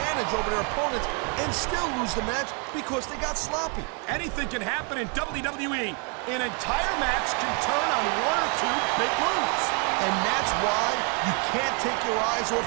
over their opponents and still lose the match because they got sloppy. Anything can happen in WWE. An entire match can turn on one or two big moves. And that's why you can't take your eyes off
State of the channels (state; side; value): quieter; left; 36.2 dB